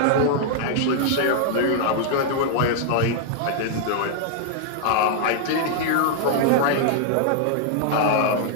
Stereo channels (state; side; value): different; both; correlation -0.01